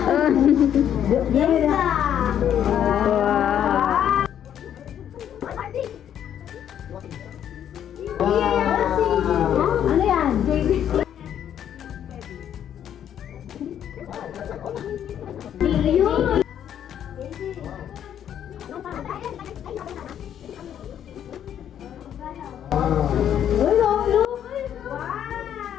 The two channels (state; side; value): quieter; right; 9.8 dB